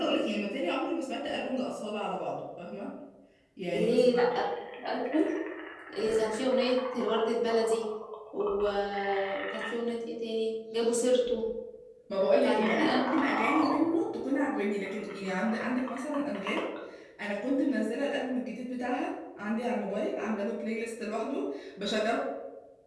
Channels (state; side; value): identical; both; correlation 1.00